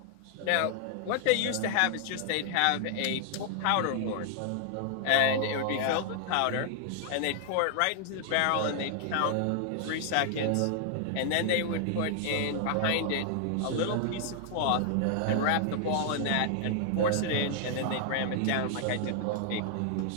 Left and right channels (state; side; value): different; both; correlation 0.00